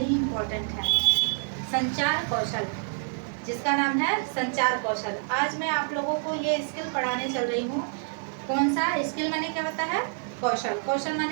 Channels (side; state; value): left; silent; 60 dB below the other